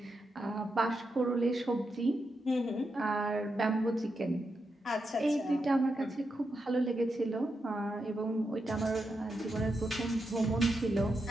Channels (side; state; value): both; normal; correlation 0.86